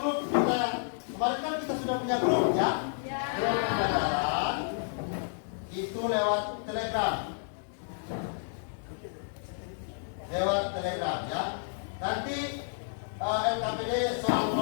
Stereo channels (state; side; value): silent; right; digital silence